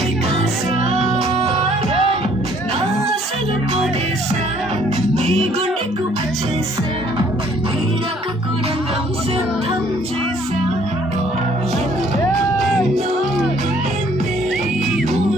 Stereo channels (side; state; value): both; normal; correlation 0.61